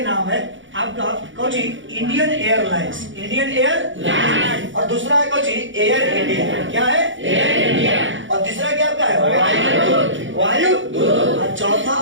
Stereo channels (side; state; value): left; late; 0.56 ms